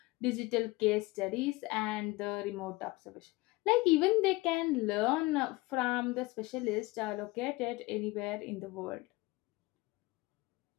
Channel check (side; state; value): right; quieter; 21.3 dB